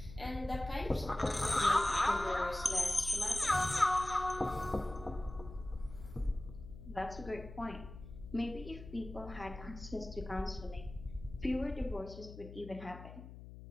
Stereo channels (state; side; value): noise; left; hum, 14 dB below the sound